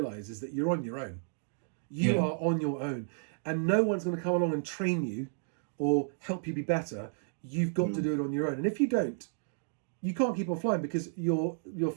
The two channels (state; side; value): silent; left; digital silence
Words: is that you're on your own. You are on your own, and no one's going to come along and train you or help you be better. You've got to do it on your own, and if you don't, you can't keep on flying, because your